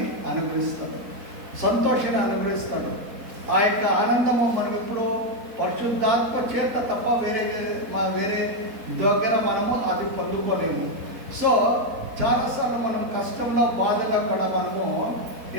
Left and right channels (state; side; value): late; left; 4.2 ms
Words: అనుగ్రహిస్తాడు, సంతోషాన్ని అనుగ్రహిస్తాడు. ఆ యొక్క ఆనందము మనం ఎప్పుడు పరిశుద్ధాత్మ చేత తప్ప వేరే దగ్గర మనము అది పొందుకోలేము. సో చాలాసార్లు మనం కష్టంలో బాధలో కూడా మనము